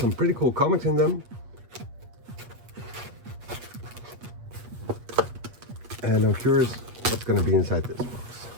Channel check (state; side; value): late; left; 8.3 ms